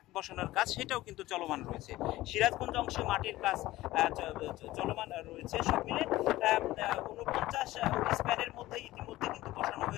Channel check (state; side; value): quieter; right; 16.9 dB